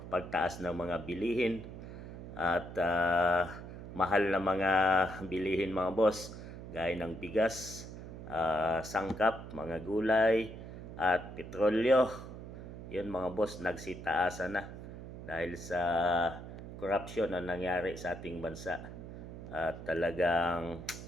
pagtaas ng mga bilihin at mahal na mga bilihin mga boss, gaya ng bigas, sangkap, mga gulay at petrolyo. Yun mga boss, nagsitaasan na dahil sa corruption na nangyari sa ating bansa. At talagang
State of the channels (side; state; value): right; noise; hum, 11 dB below the sound